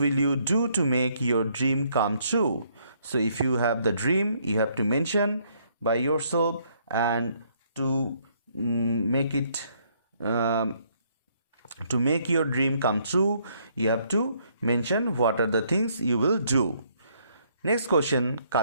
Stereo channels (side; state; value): both; inverted; correlation -0.69